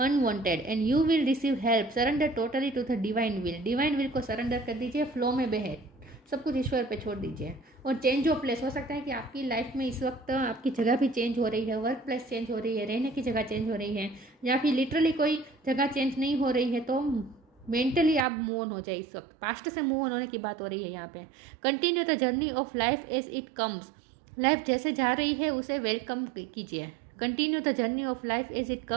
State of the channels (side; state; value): left; drops out; at 18.2 s